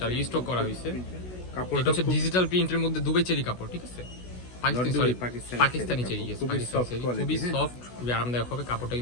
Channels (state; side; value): late; right; 16 ms